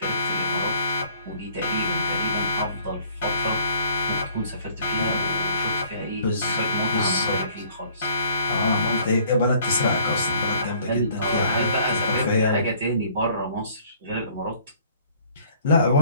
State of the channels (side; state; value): both; inverted; correlation -0.58